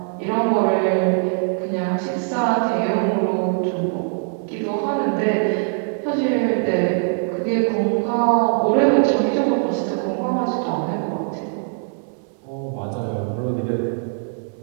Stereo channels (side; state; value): left; silent; 65 dB below the other